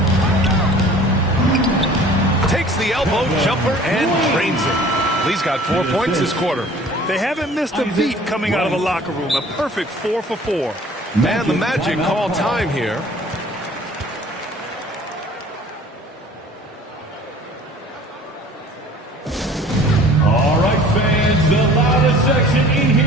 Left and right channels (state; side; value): normal; both; correlation 0.49